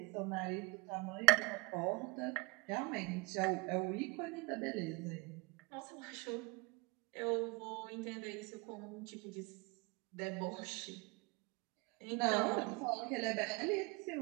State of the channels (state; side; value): quieter; left; 22.8 dB